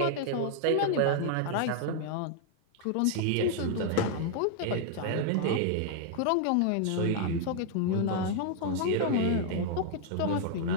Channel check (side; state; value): both; different; correlation 0.00